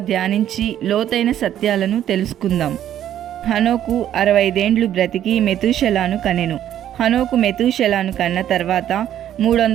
ధ్యానించి లోతైన సత్యాలను తెలుసుకుందాం. హనోకు 65 ఏండ్లు బ్రతికి మెతూషెలాను కనెను. హనోకు మెతూషెలాను కన్న తర్వాత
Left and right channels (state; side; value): quieter; left; 11.2 dB